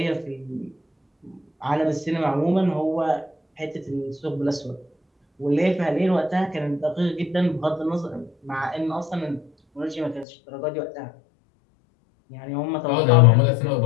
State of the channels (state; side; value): drops out; right; at 10.2 s